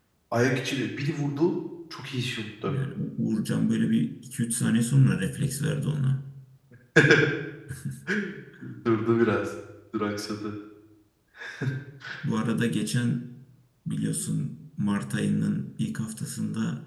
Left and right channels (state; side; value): identical; both; correlation 1.00